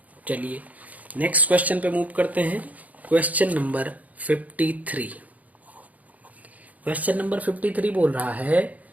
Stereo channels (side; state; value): left; late; 0.074 ms